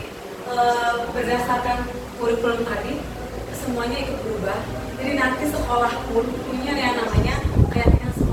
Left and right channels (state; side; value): identical; both; correlation 1.00